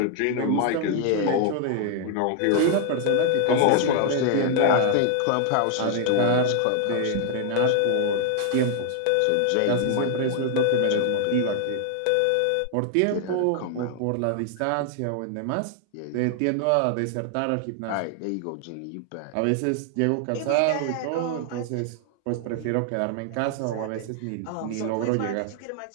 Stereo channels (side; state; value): both; different; correlation 0.00